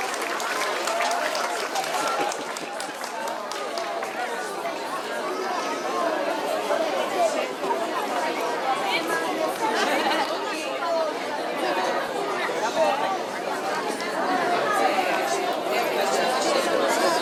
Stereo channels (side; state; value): both; identical; correlation 1.00